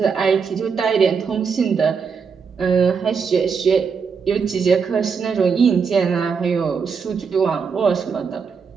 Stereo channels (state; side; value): quieter; left; 5.8 dB